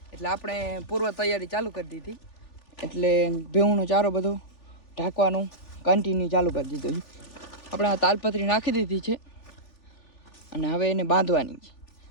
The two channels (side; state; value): right; late; 3.4 ms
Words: એટલે આપણે પૂર્વ તૈયારી ચાલુ કરી દીધી. એટલે ભેહુંનો ચારો બધો ઢાંકવાનું કન્ટિન્યુ ચાલુ કરી દીધું છે. આપણે આ તાલપત્રી નાખી દીધી છે અને હવે એને બાંધવાની છે.